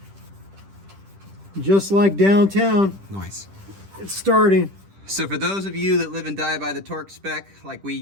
Just like downtown. Nice. It's starting. So for those of you that live and die by the torque spec like we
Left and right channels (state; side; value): late; left; 10 ms